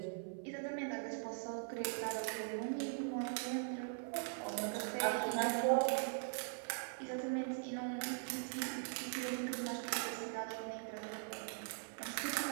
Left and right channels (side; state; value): left; silent; 50 dB below the other